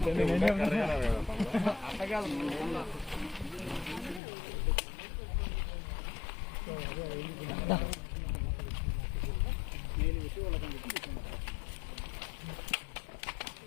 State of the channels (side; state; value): right; drops out; at 4.2 s